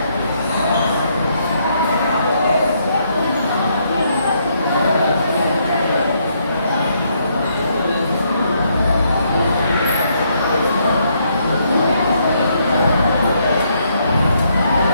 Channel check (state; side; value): inverted; both; correlation -0.73